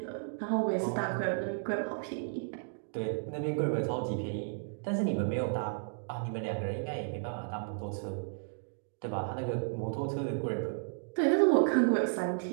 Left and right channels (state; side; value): silent; left; digital silence